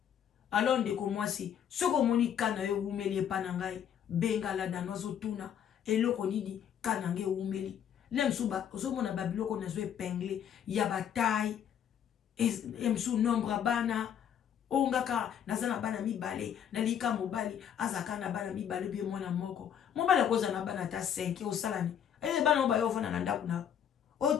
alors ndeko mwasi soko moni kana yo umeli pana ngai benga la danozo tuna eloko nini kana nge umeli lemsuba ozomona babiloko nazo épinglé ya bataille emsu nombre bana ongaka nazana bana mibale na lika mobali azaka na bana mibale bi mwana moko mobali akoza na bana ta 5 osalani ele bana oba yo vona na ndaku na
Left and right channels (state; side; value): quieter; right; 9.0 dB